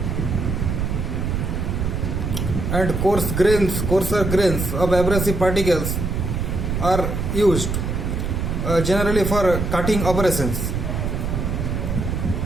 and coarser grains of abrasive particles are used generally for cutting operations.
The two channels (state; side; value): noise; right; rumble, 1 dB below the sound